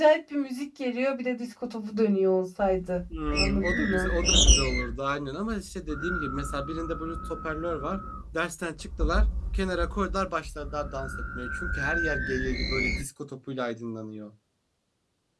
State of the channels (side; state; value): both; identical; correlation 1.00